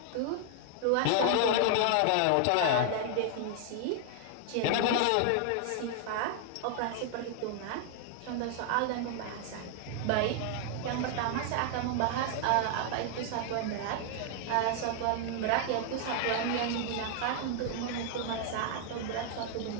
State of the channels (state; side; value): different; both; correlation 0.00